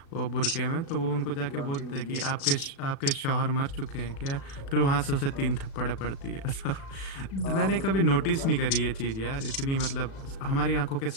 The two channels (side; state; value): right; late; 36 ms